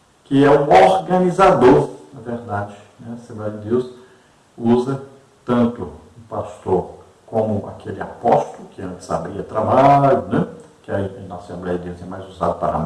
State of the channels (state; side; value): identical; both; correlation 1.00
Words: que é um organizador, na verdade, né? A Assembleia de Deus usa tanto o pastor como aquele apóstolo, que antes abria trabalho, né? Que aí na Assembleia de Deus é mais usado para